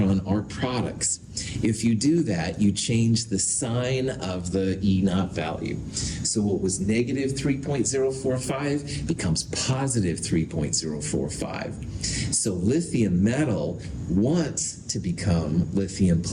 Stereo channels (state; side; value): identical; both; correlation 1.00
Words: are products. If you do that, you change the sign of the E naught value. So what was negative 3.045 becomes positive 3.045. So lithium metal wants to become lithium